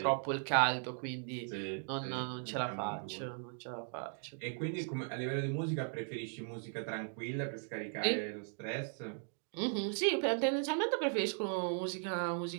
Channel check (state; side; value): silent; left; 53 dB below the other